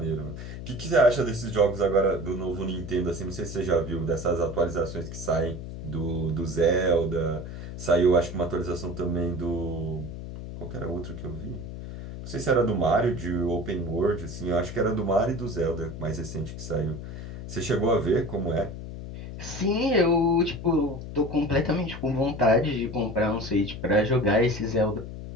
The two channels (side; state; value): left; noise; hum, 9 dB below the sound